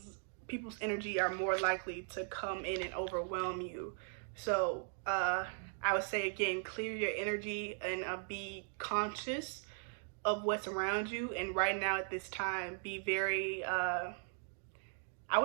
people's energy are more likely to come in and overwhelm you. So I would say, again, clear your energy and be conscious of what's around you. And right now at this time, be very, I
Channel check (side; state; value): left; silent; 52 dB below the other